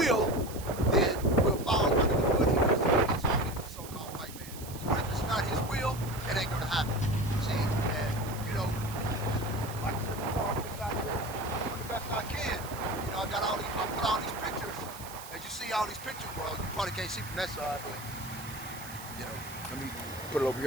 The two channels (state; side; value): noise; right; hiss, 14 dB below the sound